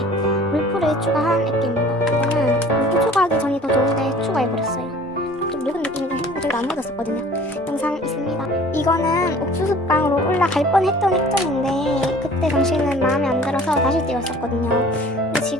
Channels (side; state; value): both; normal; correlation 0.48